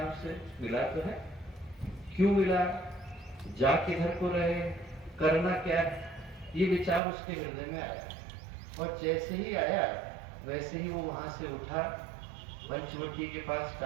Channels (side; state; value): left; drops out; at 7.0 s